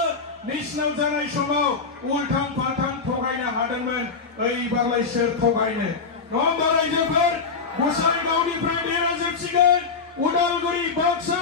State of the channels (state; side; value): quieter; right; 4.9 dB